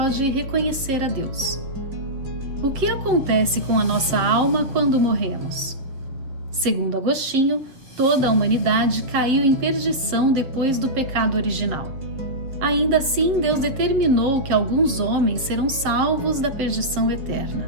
reconhecer a Deus. O que acontece com a nossa alma quando morremos? Segundo Agostinho, toda a humanidade caiu em perdição depois do pecado original. Ainda assim, Deus determinou que alguns homens serão salvos da perdição eterna.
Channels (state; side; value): late; left; 7.2 ms